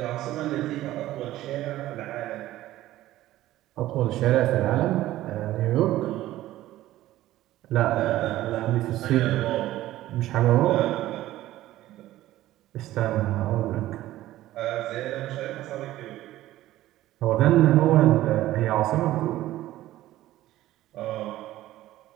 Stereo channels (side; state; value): left; quieter; 15.1 dB